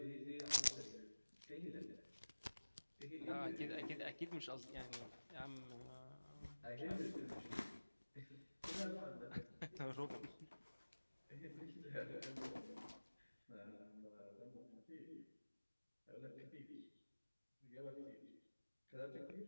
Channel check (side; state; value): both; inverted; correlation -1.00